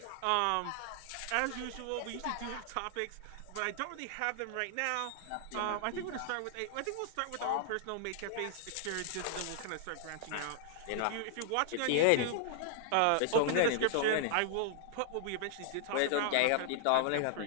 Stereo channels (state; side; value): different; both; correlation 0.00